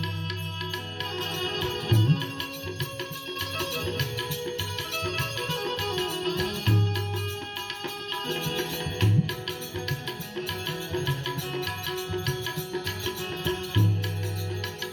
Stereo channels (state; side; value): identical; both; correlation 1.00